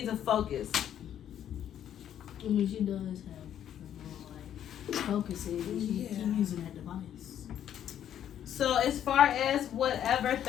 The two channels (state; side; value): quieter; right; 10.2 dB